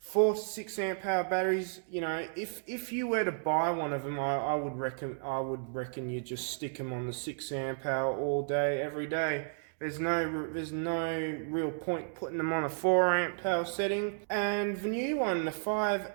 to 6 amp hour batteries, if you were to buy one of them, I would reckon you just stick them on the 6 amp hour all day, every day. There's no real point putting them on a 4 amp power setting. And the new one, the 5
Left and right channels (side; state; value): left; silent; digital silence